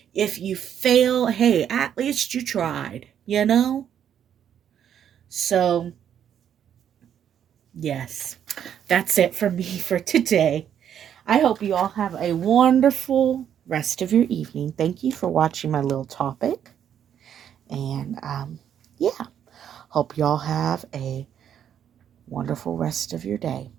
if you fail, hey, at least you tried, you know? So, yes, that's it for me for today. I hope you all have a wonderful rest of your evening. Thank you for watching my little topic. And yeah, hope you all have a wonderful rest of your day.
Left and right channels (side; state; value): left; quieter; 9.3 dB